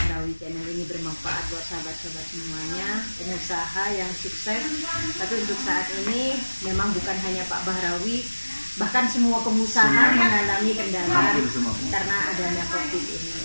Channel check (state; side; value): inverted; both; correlation -1.00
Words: channel ini bermanfaat buat sahabat-sahabat semuanya, pengusaha yang sukses. Tapi untuk saat ini memang bukan hanya Pak Bahrawi, bahkan semua pengusaha mengalami kendala karena adanya COVID ini.